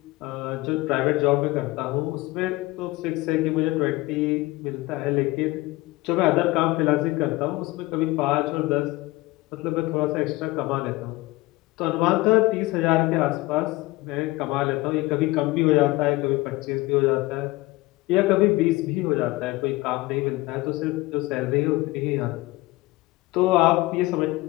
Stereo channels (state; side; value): quieter; right; 20.2 dB